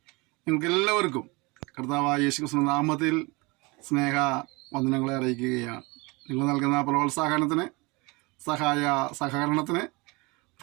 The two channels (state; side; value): quieter; left; 26.0 dB